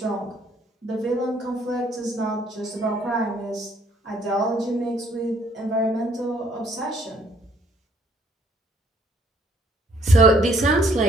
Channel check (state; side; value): normal; both; correlation 0.64